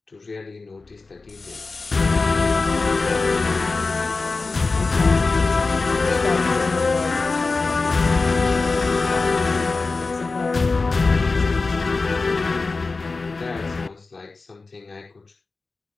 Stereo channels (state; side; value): quieter; right; 3.9 dB